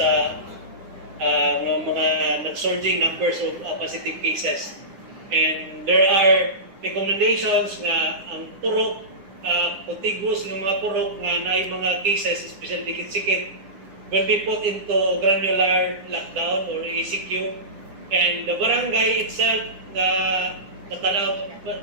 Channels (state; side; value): late; left; 9.8 ms